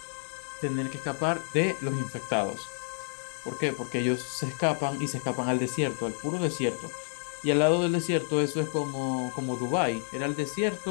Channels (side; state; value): right; silent; digital silence